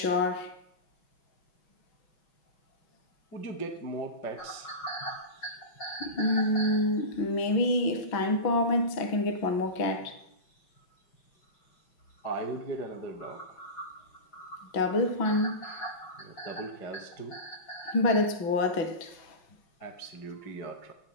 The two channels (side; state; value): right; late; 6.0 ms